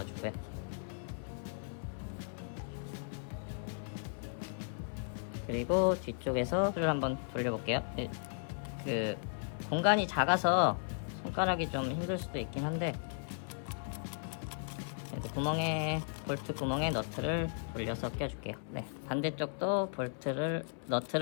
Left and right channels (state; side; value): silent; right; 54 dB below the other